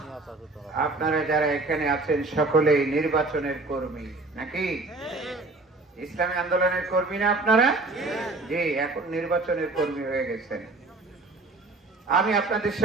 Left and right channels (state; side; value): quieter; left; 3.2 dB